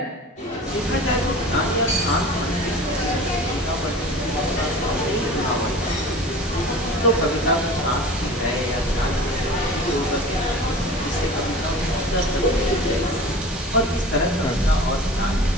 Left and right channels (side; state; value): both; normal; correlation 0.39